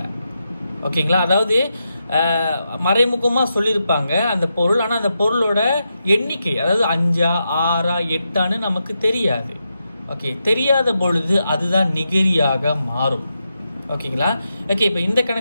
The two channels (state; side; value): inverted; both; correlation -0.86